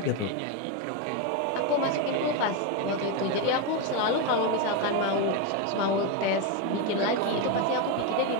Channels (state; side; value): different; both; correlation 0.03